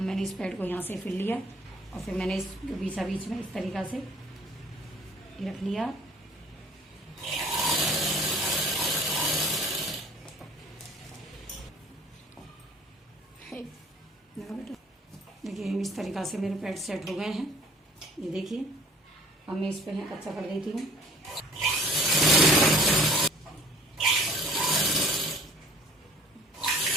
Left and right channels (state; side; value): normal; both; correlation 0.52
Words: इस पैड को यहाँ से फिर लिया और फिर मैंने इसको बीच में इस तरीक़ा से रख लिया। देखिए इस तरीक़ा से मेरे पैड सेट हो गए हैं। ये देखिए अब मैं इस पे कच्चा कर देती हूँ।